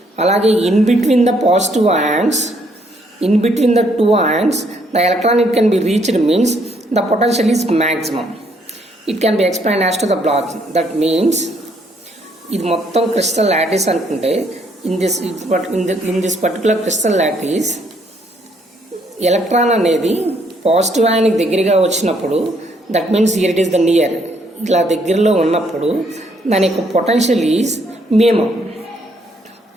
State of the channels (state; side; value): normal; both; correlation 0.69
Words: అలాగే in between the positive ions, in between the two ions the electron it can be reached means the potential is maximum. It can be explain as to the block. That means ఇది మొత్తం crystal lattice అనుకుంటే in this particular crystal lattice electron అనేది positive అయానికి దగ్గరగా వచ్చినప్పుడు, that means here it is the near, ఇలా దగ్గరలో ఉన్నప్పుడు దాని యొక్క పొటెన్షియల్ ఈజ్ మినిమం.